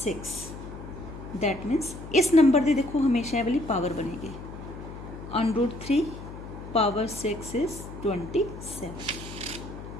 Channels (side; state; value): left; noise; hum, 12 dB below the sound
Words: 6. That means इस number की देखो हमेशा ये वाली power बनेगी. √3 power 6 is 27.